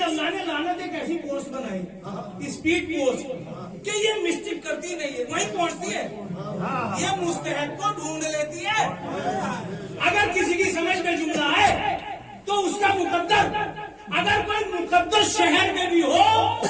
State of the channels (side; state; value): both; identical; correlation 1.00